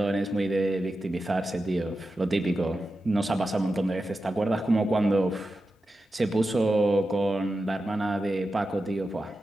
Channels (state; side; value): normal; both; correlation 0.91